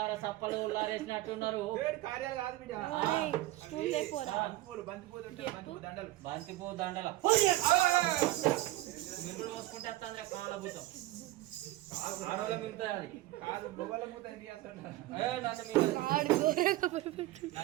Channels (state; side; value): quieter; left; 17.0 dB